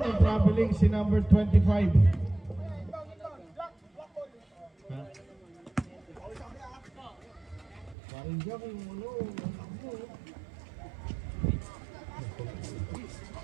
ang traveling si number 25. Ha? Parang dyan kung ano,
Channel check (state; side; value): drops out; left; at 8.0 s